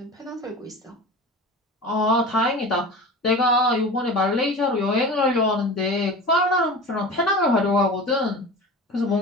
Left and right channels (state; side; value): normal; both; correlation 0.33